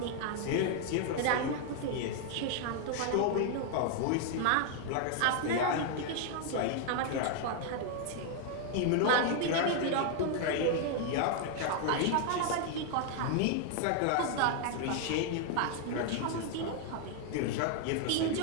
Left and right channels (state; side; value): different; both; correlation 0.00